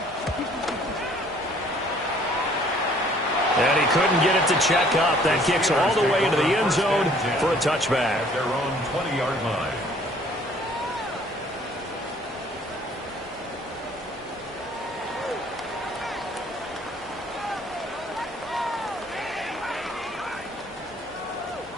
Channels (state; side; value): normal; both; correlation 0.58